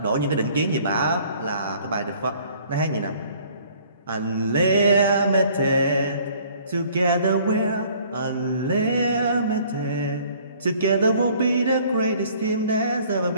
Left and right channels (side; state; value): both; inverted; correlation -0.56